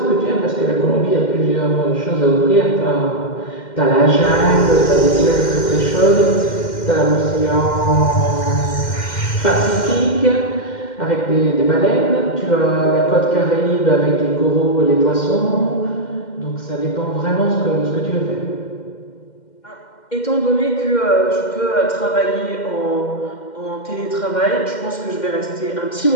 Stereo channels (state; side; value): late; right; 2.1 ms